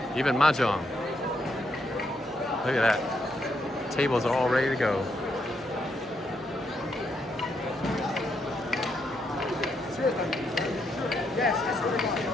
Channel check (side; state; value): both; normal; correlation 0.78